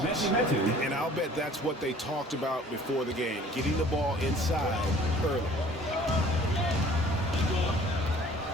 And I'll bet that's what they talked about before the game, getting the ball inside early.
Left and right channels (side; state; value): both; normal; correlation 0.51